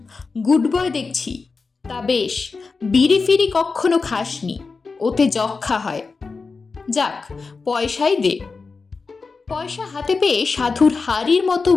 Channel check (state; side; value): quieter; right; 4.4 dB